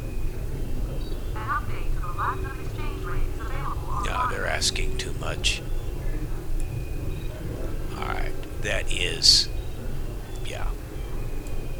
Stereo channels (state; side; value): identical; both; correlation 1.00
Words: No, they're asking too much. Alright, that is... yeah.